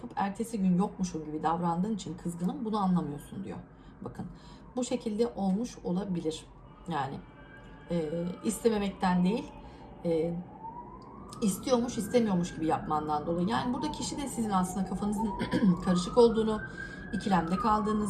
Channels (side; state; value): both; identical; correlation 1.00